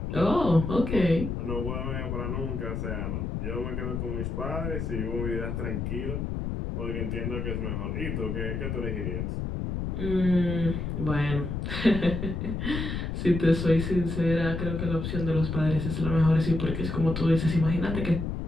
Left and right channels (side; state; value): left; noise; rumble, 3 dB below the sound